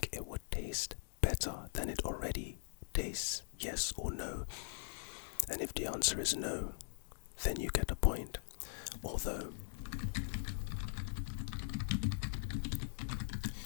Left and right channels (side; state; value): right; silent; digital silence